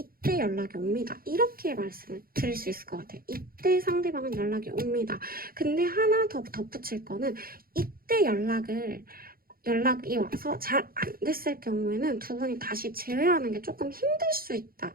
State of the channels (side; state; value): left; late; 0.43 ms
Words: 연락이 옵니다. 이렇게 말씀을 드릴 수 있을 것 같아요. 이때 상대방은 연락이 옵니다. 근데 하나 더 덧붙일 거는 이때 연락이 와서 잘 안 됐을 경우에는 두 분이 다시 재회하는 게 조금 힘들 수 있다.